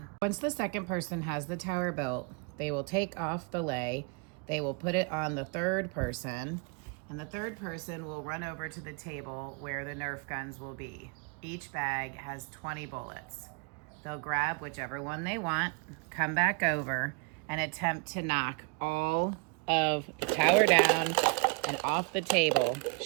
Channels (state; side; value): quieter; left; 35.3 dB